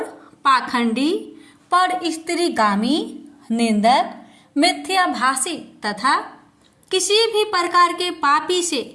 पाखंडी, पर स्त्रीगामी, निंदक, मिथ्याभाषी तथा किसी भी प्रकार के पापी से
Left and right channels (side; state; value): both; identical; correlation 1.00